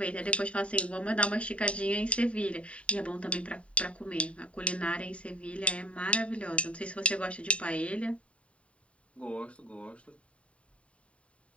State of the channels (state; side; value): late; right; 0.063 ms